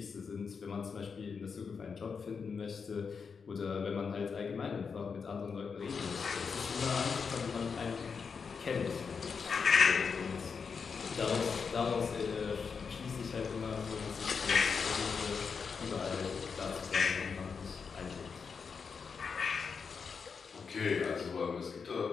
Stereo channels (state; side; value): quieter; right; 5.7 dB